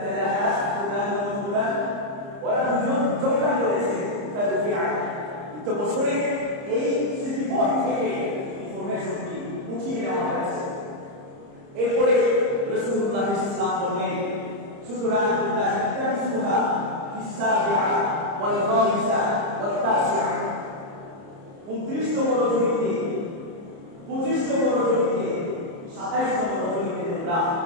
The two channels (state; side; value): late; left; 30 ms